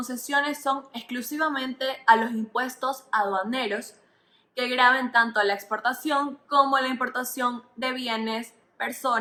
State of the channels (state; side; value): identical; both; correlation 1.00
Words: son exclusivamente a los impuestos aduaneros que graven tanto a la exportación como a la importación de bienes,